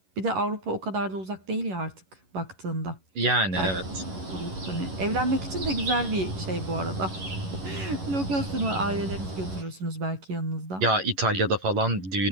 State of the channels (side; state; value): left; late; 11 ms